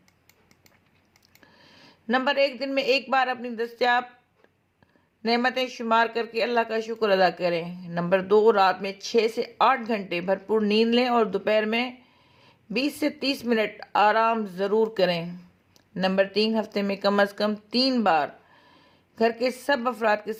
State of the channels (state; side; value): identical; both; correlation 1.00